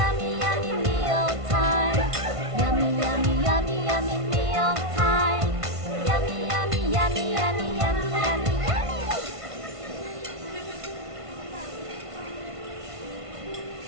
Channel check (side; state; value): left; late; 1.5 ms